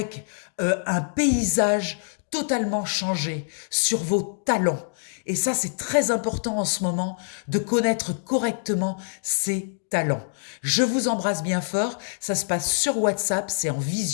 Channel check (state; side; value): silent; right; digital silence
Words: un paysage totalement changé sur vos talents. Et ça, c'est très important en ce moment de connaître correctement ses talents. Je vous embrasse bien fort. Ça se passe sur WhatsApp, c'est en